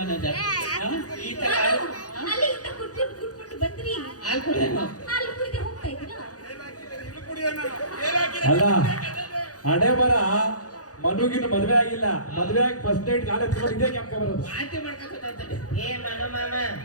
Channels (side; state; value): right; late; 0.67 ms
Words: ಹಾ? ಈ ತರ ಅಲ್ಲಿಂದ ಕುಟ್ಕೊಂಡು ಬಂದ್ರಿ. ಹಾಲು ಕುಡಿಯೋಣ ಹಾಲು ಕುಡಿದೆ ಹೋಗ್ತಾ ಇದ್ದೀರಾ? ಅಲ್ಲ ಹಣೆ ಬರ ಮನುಗಿನ ಮದ್ವೆ ಆಗಿಲ್ಲ, ಮದ್ವೆ ಆಗಿ ಫಸ್ಟ್ ನೈಟ್ ಕಾಲೇಜ್ ಇದೇ ಕ್ಯಾಂಪ್ ಬರೋದು. ವಾಂತಿ ಮಾಡ್ಕೊಂತ ಏ ಮನು ಮಾಮ